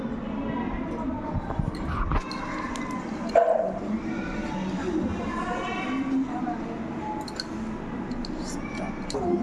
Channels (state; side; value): identical; both; correlation 1.00